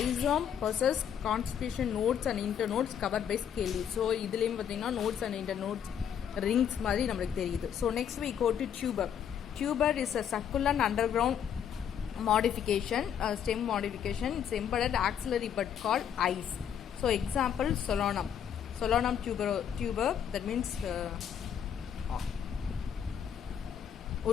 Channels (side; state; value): right; quieter; 8.7 dB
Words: possess conspicuous nodes and internodes covered by scale leaves. So இதுலேயும் பார்த்தீங்கன்னா nodes and internodes rings மாதிரி நம்மளுக்கு தெரியுது. So next we go to tuber. Tuber is a succulent underground modification, stem modification. It's embedded axillary bud called eyes. So example solanum tuber, that means